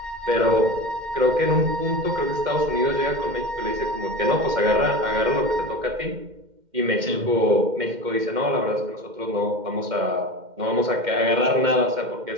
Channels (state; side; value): late; left; 2.1 ms